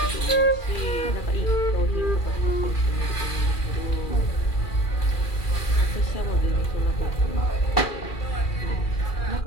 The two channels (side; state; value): right; late; 2.4 ms